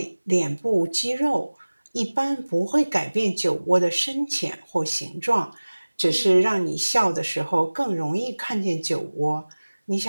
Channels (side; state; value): both; inverted; correlation -1.00